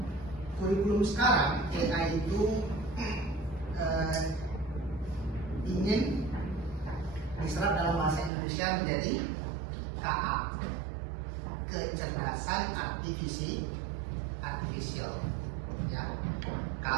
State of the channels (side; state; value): left; drops out; at 8.3 s